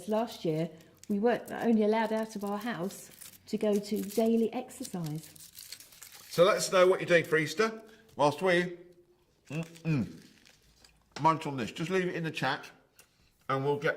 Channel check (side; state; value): both; identical; correlation 1.00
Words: last year we weren't only allowed out of our house to go to daily exercise. So let us know what you're doing for Easter. Whilst we munch on this. Just leave it in the chat and we'll